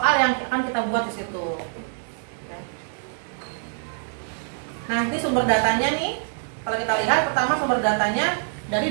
yang akan kita buat di situ. Nah, ini sumber datanya nih. Kalau kita lihat pertama sumber datanya dari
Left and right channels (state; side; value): silent; left; digital silence